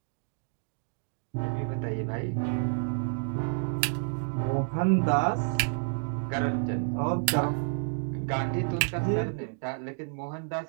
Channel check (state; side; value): silent; left; 57 dB below the other